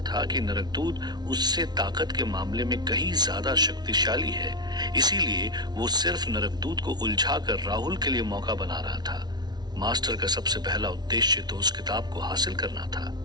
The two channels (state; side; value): late; left; 0.20 ms